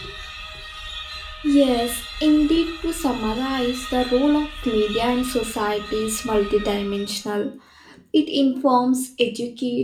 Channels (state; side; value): identical; both; correlation 1.00